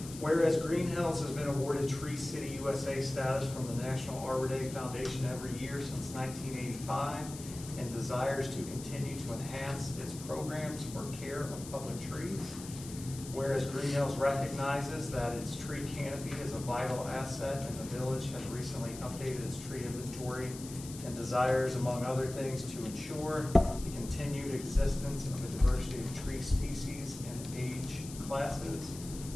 Whereas Greenhills has been awarded Tree City USA status from the National Arbor Day Foundation every year since 1985 and desires to continue to enhance its programs for care of public trees. Whereas Greenhills recognizes that its tree canopy is a vital asset and the village has recently updated its tree inventory and desires, among other things, to ensure the continued existence of a diversity of tree species and age classes.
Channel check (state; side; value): noise; left; hiss, 13 dB below the sound